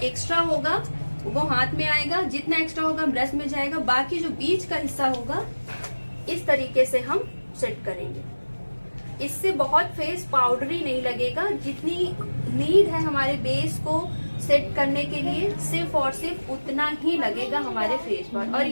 होगा वो हाथ में आएगा, जितना एक्स्ट्रा होगा ब्रश में जाएगा, बाकी जो बीच का हिस्सा होगा इस तरीके से हम सेट करेंगे। इससे बहुत फेस पाउडरी नहीं लगेगा, जितनी नीड है हमारे बेस को सेट करने के लिए सिर्फ और सिर्फ उतना ही लगेगा हमारे फेस पर। और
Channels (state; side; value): inverted; both; correlation -1.00